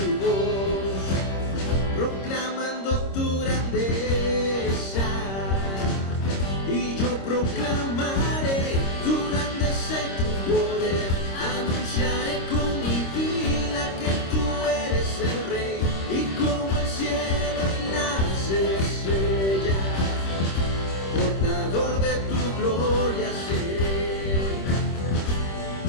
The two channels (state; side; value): late; right; 26 ms